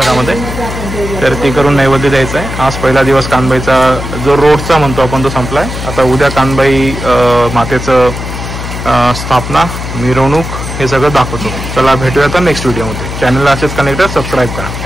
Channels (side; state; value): left; noise; hum, 7 dB below the sound